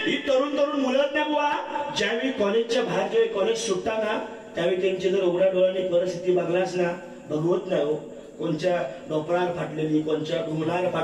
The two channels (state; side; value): identical; both; correlation 1.00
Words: ही तरुण मुलं ना बुवा, ज्यावेळी कॉलेजच्या बाहेर जेव्हा कॉलेज सुटताना, त्यावेळी त्यांची जर उघड्या डोळ्याने परिस्थिती बघलास ना, भगवत नाही हो. कोणच्या डोपरार फाटलेली, कोणच्या ढुंगणाला